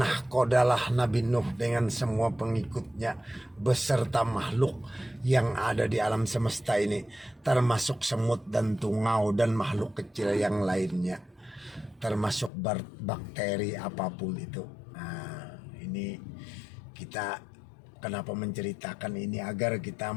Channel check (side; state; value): right; drops out; at 12.5 s